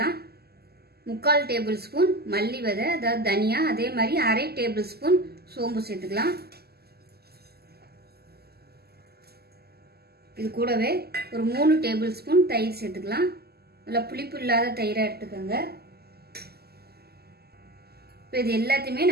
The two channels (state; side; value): late; left; 0.46 ms